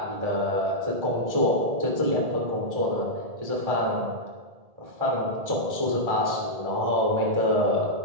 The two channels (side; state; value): left; late; 1.7 ms